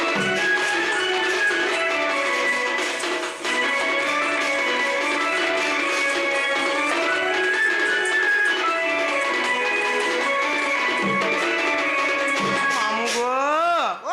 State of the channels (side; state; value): both; identical; correlation 1.00